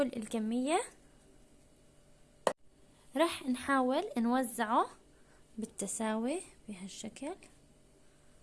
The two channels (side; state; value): both; identical; correlation 1.00